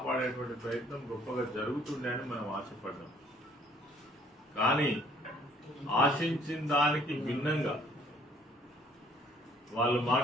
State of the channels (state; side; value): normal; both; correlation 0.60